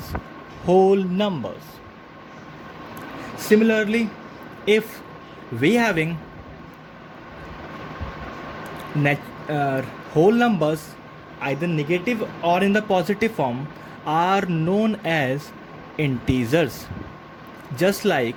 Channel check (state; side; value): identical; both; correlation 1.00